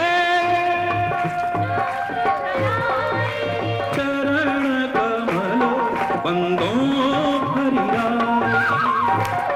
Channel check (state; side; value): identical; both; correlation 1.00